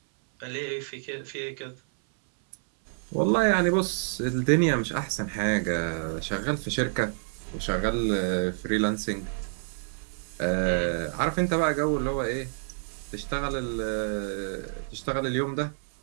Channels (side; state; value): left; silent; 59 dB below the other